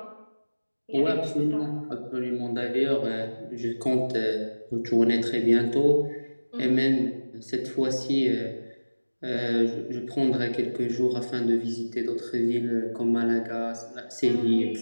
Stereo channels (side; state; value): both; inverted; correlation -1.00